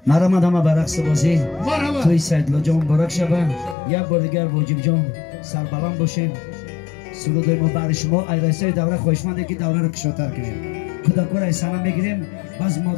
مرحمت همه به رقص بازی توی سیدلا جان مبارک شبه یک بار دیگر واجب جان سربلند باشیم سرودای ما برای شما ایرانسای دوره خوشمنده که دوره رو کشاتر کنیم خدا کور ایسانه میگیریم باز ما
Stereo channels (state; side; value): drops out; right; at 3.8 s